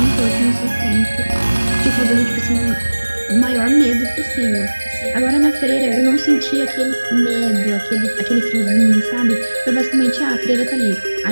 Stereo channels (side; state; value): both; inverted; correlation -1.00